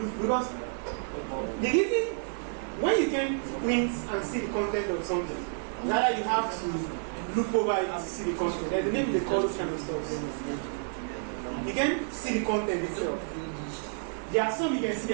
because the reason when you can print and see the content of something, rather you have to look over it to see the content. There's a name they call this kind of stuff. You can see the content itself. There are some you can see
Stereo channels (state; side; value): silent; left; digital silence